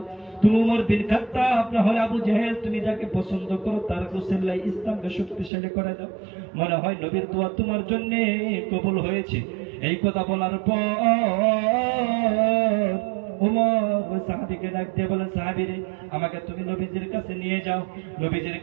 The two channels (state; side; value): drops out; left; at 5.5 s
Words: তুমি উমর বিন খাত্তাব না হলে আবু জাহেল, তুমি যাকে পছন্দ করো তার গোসলাই ইসলামকে শক্তিশালী করে দাও। মনে হয় নবীর দোয়া তোমার জন্য কবুল হয়েছে। এই কথা বলার পর উমর ওই সাহাবীকে ডাক দিয়ে বলেন, সাহাবী রে, আমাকে তুমি নবীজির কাছে নিয়ে যাও। নবীজির